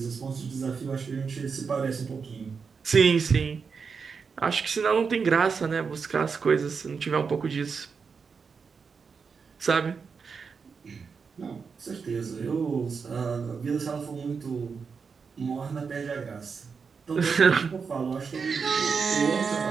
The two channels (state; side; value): quieter; left; 5.6 dB